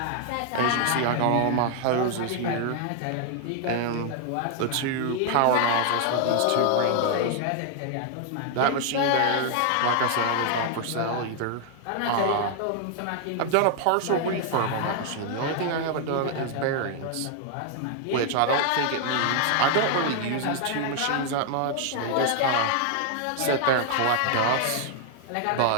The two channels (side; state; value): both; different; correlation 0.00